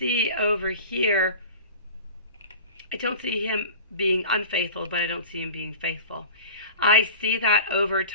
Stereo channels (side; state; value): both; inverted; correlation -0.38